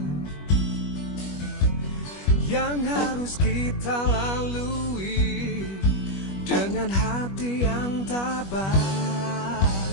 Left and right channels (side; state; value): right; late; 21 ms